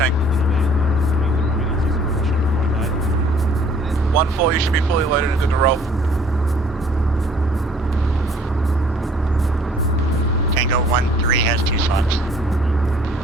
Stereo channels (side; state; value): both; normal; correlation 0.56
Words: 1-4, you should be fully loaded and good to roll. Tango 1-3 has 2 slots.